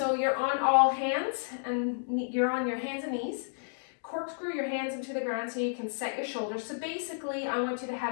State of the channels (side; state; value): right; silent; digital silence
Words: you're on all hands, and you're on your hands and knees. Corkscrew your hands into the ground so you can set your shoulders. So basically, I want you to